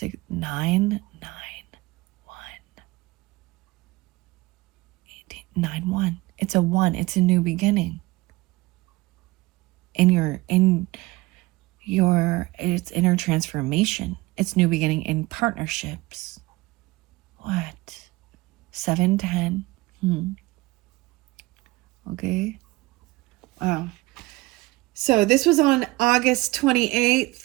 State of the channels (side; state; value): left; quieter; 21.0 dB